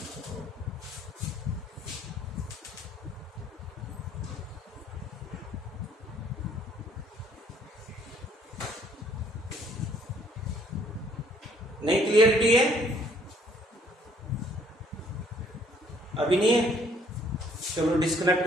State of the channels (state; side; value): normal; both; correlation 0.63